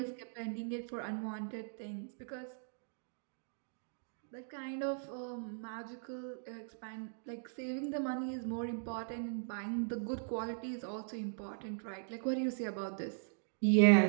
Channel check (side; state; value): left; silent; digital silence